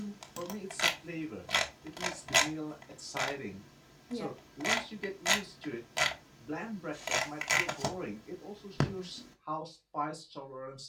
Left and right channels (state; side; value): identical; both; correlation 1.00